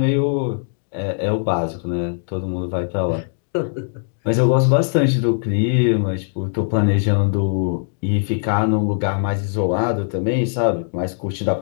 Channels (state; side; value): silent; right; digital silence